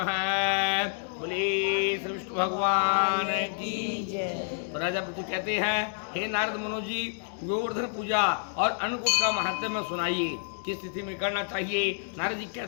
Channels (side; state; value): right; silent; digital silence